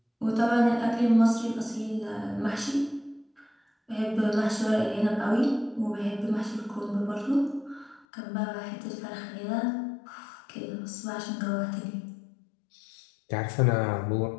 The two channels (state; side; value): drops out; right; at 8.1 s